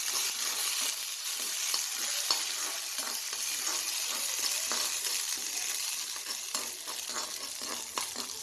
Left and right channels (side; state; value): both; identical; correlation 1.00